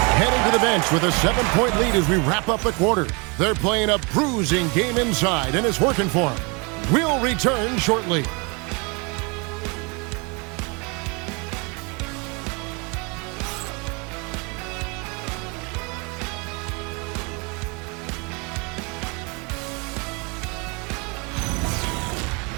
heading to the bench with a 7-point lead as we wrap up the quarter. They're playing a bruising game inside, and it's working for them. We'll return shortly.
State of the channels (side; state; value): left; quieter; 30.7 dB